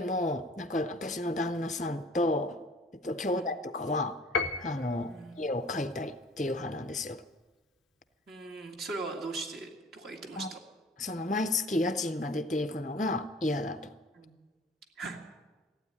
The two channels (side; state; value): both; normal; correlation 0.48